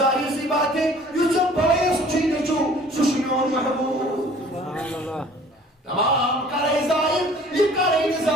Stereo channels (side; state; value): both; normal; correlation 0.51